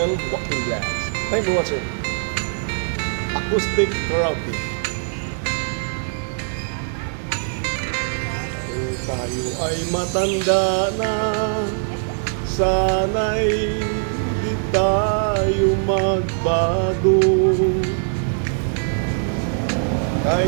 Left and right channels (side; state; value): left; silent; 58 dB below the other